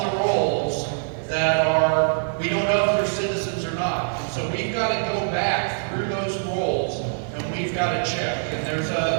the rolls that we don't know if they're citizens or not. So we've got to go back got to check. And there's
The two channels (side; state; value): left; silent; 61 dB below the other